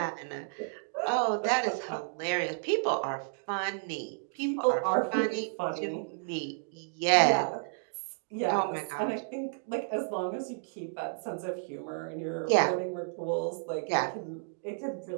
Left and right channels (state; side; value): silent; left; digital silence